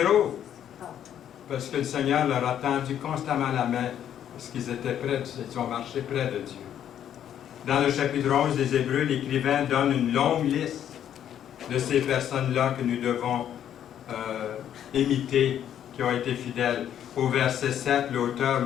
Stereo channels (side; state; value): right; quieter; 10.0 dB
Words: Parce que le Seigneur leur a tendu constamment la main, parce qu'ils étaient près, ils ont marché près de Dieu. Dans le chapitre 11 des Hébreux, l'écrivain donne une longue liste de ces personnes-là que nous devons imiter, qui ont été fidèles. Au verset 7, l'auteur